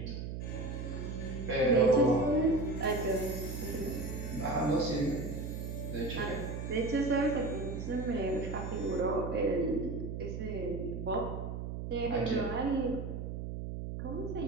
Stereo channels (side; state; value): right; noise; hum, 5 dB below the sound